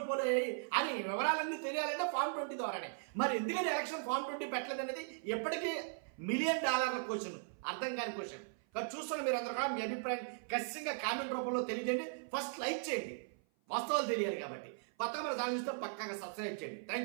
పోలయ్యాయి అని వివరాలన్నీ తెలియాలంటే ఫామ్ 20 ద్వారానే. మరి ఎందుకని ఎలక్షన్ ఫామ్ 20 పెట్టలేదు అనేది ఎప్పటికీ $1 మిలియన్ క్వశ్చన్, అర్థం కాని క్వశ్చన్. కాబట్టి చూస్తున్న మీరు అందరూ కూడా మీ అభిప్రాయం ఖచ్చితంగా కామెంట్ రూపంలో తెలియజేయండి. ఫస్ట్ లైక్ చేయండి, వాస్తవాలు తెలియాలి కాబట్టి. కొత్తగా మన ఛానల్ చూస్తే పక్కాగా సబ్స్క్రైబ్ చేయండి.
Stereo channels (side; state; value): left; silent; 52 dB below the other